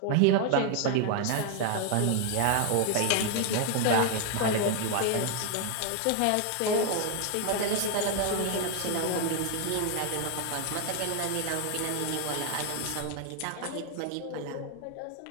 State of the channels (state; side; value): different; both; correlation 0.00